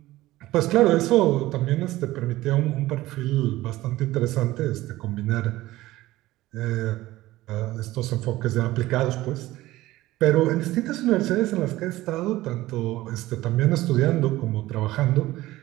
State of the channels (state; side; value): quieter; left; 17.0 dB